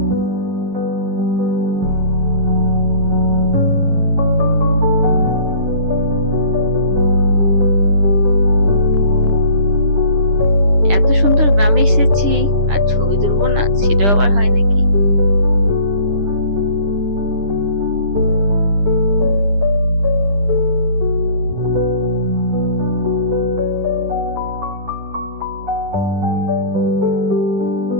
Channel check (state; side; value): late; left; 10 ms